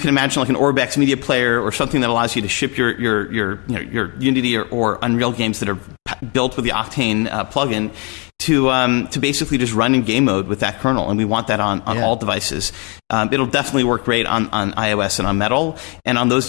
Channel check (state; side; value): quieter; right; 32.4 dB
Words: imagine like an Orbex media player or something that allows you to ship your Unity or Unreal games that are built with the Octane plugin to basically just run in game mode with that kernel, and we want that on all devices. It'll definitely work great on iOS and on Metal, and on those